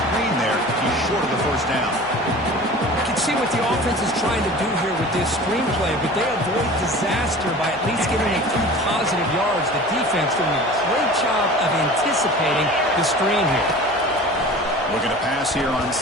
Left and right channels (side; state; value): both; normal; correlation 0.40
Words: there. He's short of the first down. You can see what the offense is trying to do here with this screenplay, but they avoid disaster by at least getting a few positive yards. The defense doing a great job of anticipating the screen here. Looking to pass here on